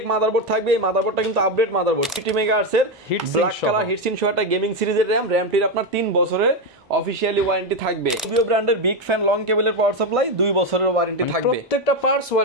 মাদারবোর্ড থাকবে। এই মাদারবোর্ডটা কিন্তু আপডেট মাদারবোর্ড, 50 মেগাহার্টজ এর ব্ল্যাক কালার হিটসিন সহ একটা গেমিং সিরিজের র‍্যামটির আপনার 3 বছরের অফিশিয়ালি ওয়ারেন্টি থাকবে। Rubio ব্র্যান্ডের বিগ ফ্যান লং কেবলের পাওয়ার সাপ্লাই 2 বছরের ওয়ারেন্টি থাকবে। প্রত্যেকটা পার্টস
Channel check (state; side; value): normal; both; correlation 0.09